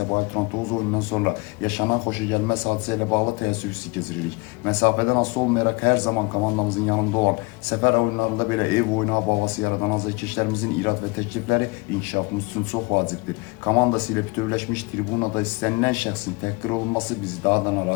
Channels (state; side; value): quieter; right; 26.6 dB